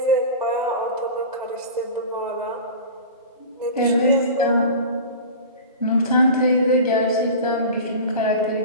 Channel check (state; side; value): inverted; both; correlation -0.33